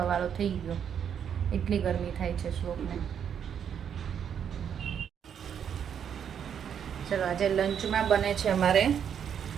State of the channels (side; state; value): left; quieter; 8.3 dB